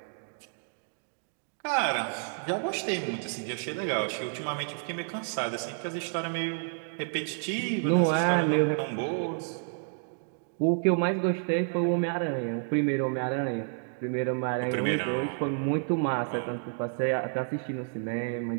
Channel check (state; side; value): silent; left; 58 dB below the other